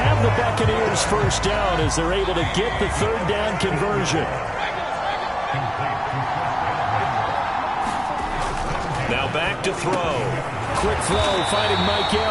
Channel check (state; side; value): identical; both; correlation 1.00